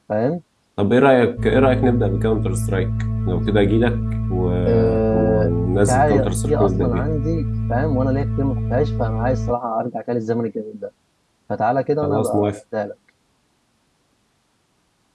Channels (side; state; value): both; identical; correlation 1.00